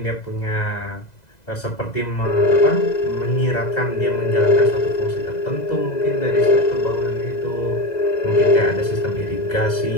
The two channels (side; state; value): right; late; 2.0 ms